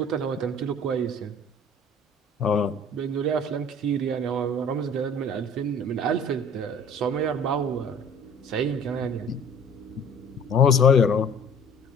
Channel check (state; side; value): normal; both; correlation 0.50